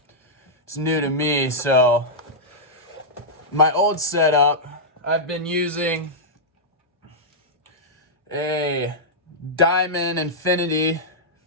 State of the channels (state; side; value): normal; both; correlation -0.09